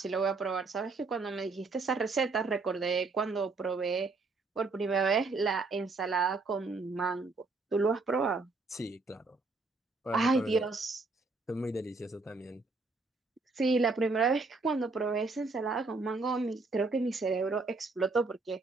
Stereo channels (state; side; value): quieter; left; 3.8 dB